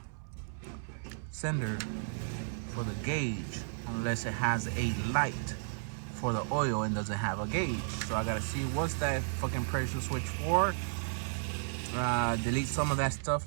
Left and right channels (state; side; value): silent; left; 55 dB below the other